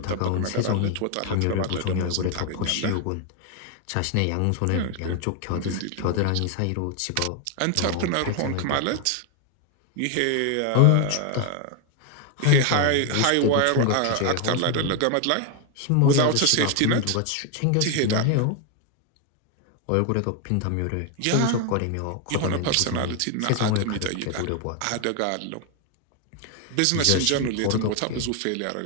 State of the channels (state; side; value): different; both; correlation 0.01